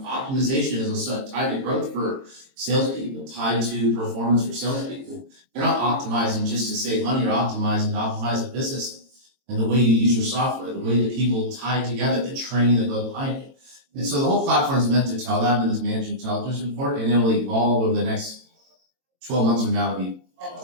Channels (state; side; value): late; left; 22 ms